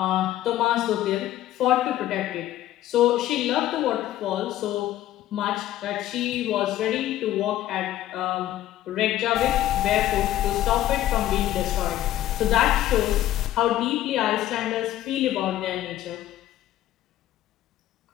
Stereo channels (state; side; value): quieter; right; 13.6 dB